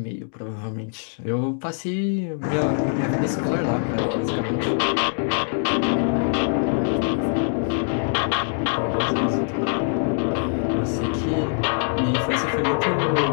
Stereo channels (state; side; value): silent; right; digital silence